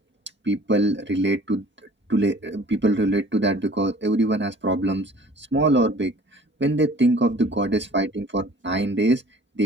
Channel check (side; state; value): both; normal; correlation 0.50